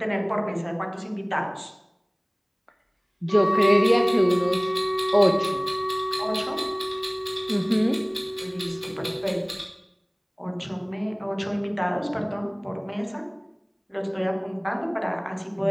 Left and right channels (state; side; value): identical; both; correlation 1.00